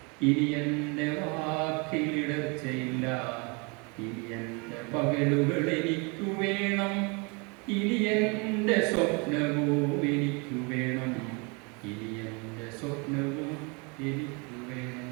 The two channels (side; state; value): left; quieter; 31.2 dB